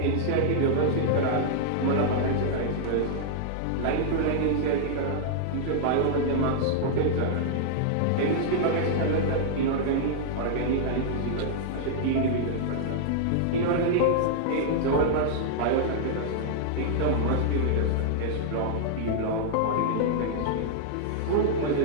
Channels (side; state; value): both; different; correlation -0.01